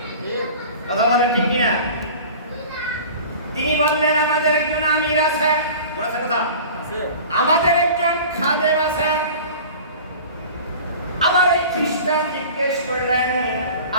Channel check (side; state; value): both; inverted; correlation -0.40